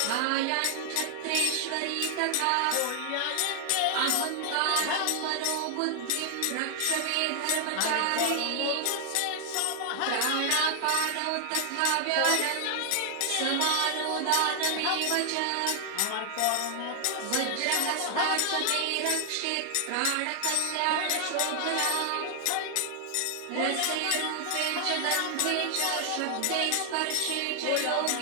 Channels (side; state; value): both; different; correlation 0.00